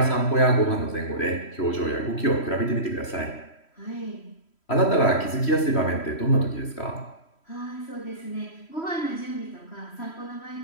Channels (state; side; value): late; right; 3.1 ms